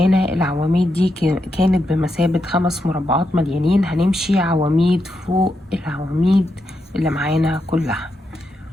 العواميد دي كانت بمثابة 5 مربعات مليانين، هنمشي عواميد فوق العواميد اللي معانا كلها.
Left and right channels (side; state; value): both; normal; correlation 0.84